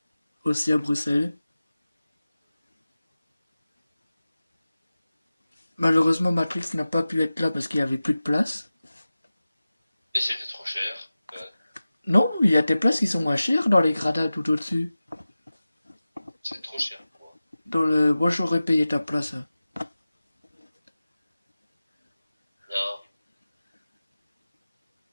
Aussi à Bruxelles. Malheureusement, Matrix n'a pas pu être là parce qu'il n'y avait plus de place. Et c'était trop cher. Non, il y a des places qui sont moins chères dans les gradins tout au-dessus. C'est trop cher pour moi. Dans le... Moi, j'aurais payé ta place.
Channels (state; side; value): inverted; both; correlation -0.96